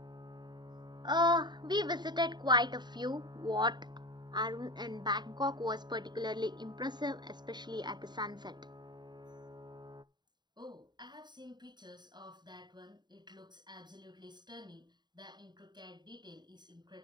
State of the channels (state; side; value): late; left; 0.21 ms